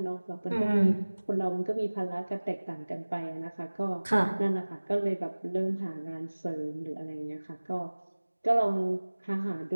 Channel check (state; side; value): inverted; both; correlation -1.00